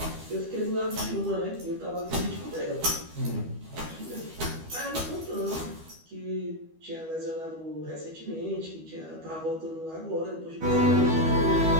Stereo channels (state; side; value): late; left; 12 ms